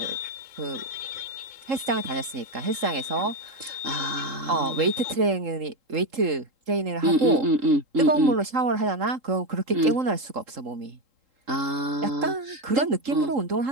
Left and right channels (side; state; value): left; late; 3.8 ms